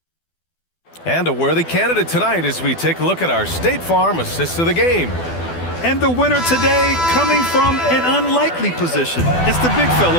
And a worthy candidate tonight as we take a look at our State Farm assist of the game. And the winner today coming from an unlikely position. It's the big fella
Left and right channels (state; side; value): late; right; 12 ms